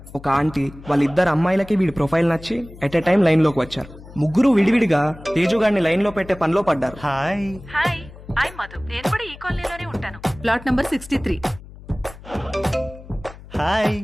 ఒక ఆంటీ వాళ్ళిద్దరు అమ్మాయిలకి వీడి ప్రొఫైల్ నచ్చి ఎట్ ఎ టైం లైన్లోకి వచ్చారు. ముగ్గురు విడివిడిగా తేజుగాడిని లైన్లో పెట్టే పనిలో పడ్డారు. హాయ్. Hi, I Madhu. నేను కూడా ఈ కాలనీలోనే ఉంటాను. Plot number 63. Hi.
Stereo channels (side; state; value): left; noise; hum, 18 dB below the sound